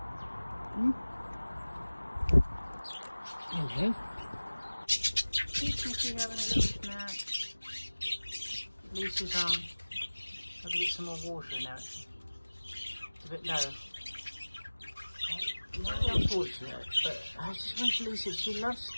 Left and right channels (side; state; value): both; inverted; correlation -1.00